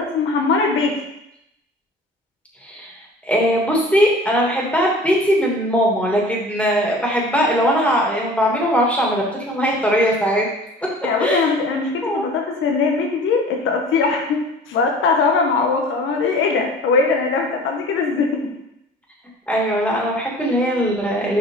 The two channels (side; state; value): both; normal; correlation 0.44